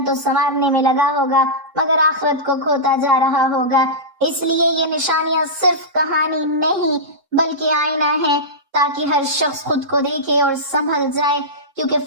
تو سنوارنے میں لگا ہوگا مگر آخرت کو کھوتا جا رہا ہوگا۔ اس لیے یہ نشانیاں صرف کہانی نہیں بلکہ آئینہ ہے، تاکہ ہر شخص خود کو دیکھے اور سنبھل جائے، کیونکہ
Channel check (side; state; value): left; late; 3.7 ms